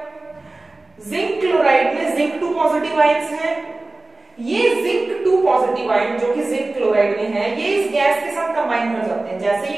जिंक क्लोराइड में जिंक 2 पॉजिटिव आयंस हैं, ये जिंक 2 पॉजिटिव आयन जो कि जिंक क्लोराइड में है ये इस गैस के साथ कंबाइन कर जाते हैं। जैसे ये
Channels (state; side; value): quieter; left; 3.0 dB